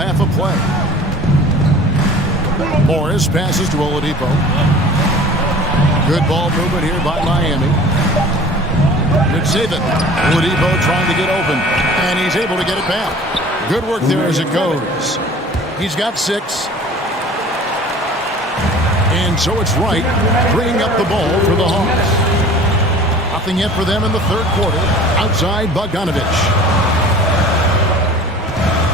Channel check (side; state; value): both; normal; correlation 0.45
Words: of play. Morris passes to Oladipo. Good ball movement here by Miami. Good save it. Oladipo trying to get open, and he's able to get it back. Good work there as it goes. He's got 6. And so it's Wright bringing up the ball for the Hawks. Nothing yet for them in the third quarter. Outside Bogdanovich.